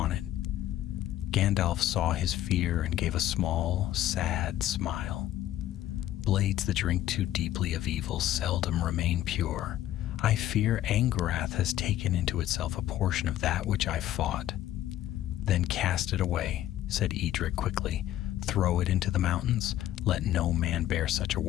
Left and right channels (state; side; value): quieter; right; 13.0 dB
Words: it. Gandalf saw his fear and gave a small, sad smile. "Blades that drink too deeply of evil seldom remain pure. I fear Angarath has taken into itself a portion of that which I fought. Then cast it away, said Edric quickly. Throw it into the mountains. Let no man bear such a